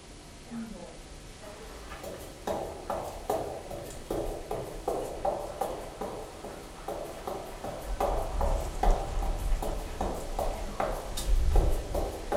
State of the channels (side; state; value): both; identical; correlation 1.00